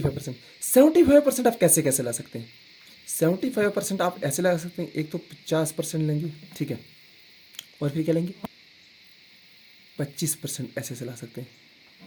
75% आप कैसे कैसे ला सकते हैं, 75% आप ऐसे लगा सकते हैं, एक तो 50% लेंगे, ठीक है, और फिर क्या लेंगे 25% ऐसे ऐसे ला सकते हैं।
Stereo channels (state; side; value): identical; both; correlation 1.00